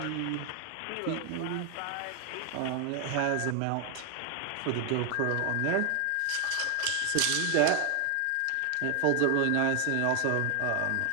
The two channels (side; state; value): both; different; correlation 0.01